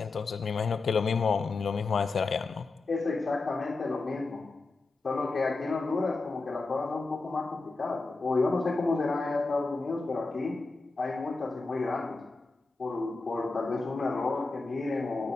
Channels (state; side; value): quieter; right; 3.7 dB